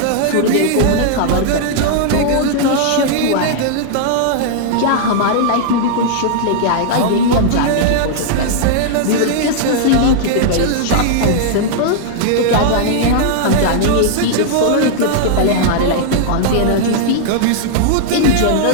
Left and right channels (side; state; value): both; different; correlation -0.01